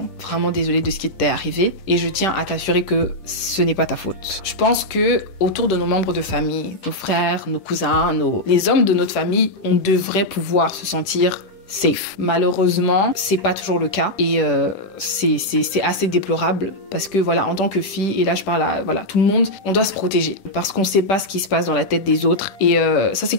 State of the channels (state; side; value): late; right; 10 ms